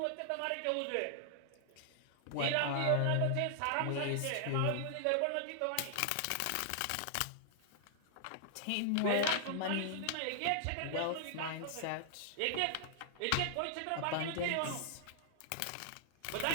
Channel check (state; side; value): different; both; correlation -0.01